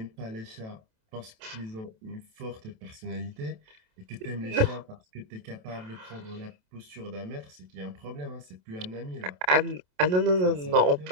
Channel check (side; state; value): left; late; 27 ms